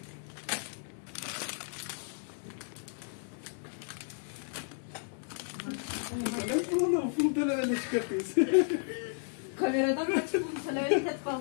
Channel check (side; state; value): right; silent; digital silence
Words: Pul televizyonu çıkartıyoruz. Kameradan kaçıp bunu söylemeyi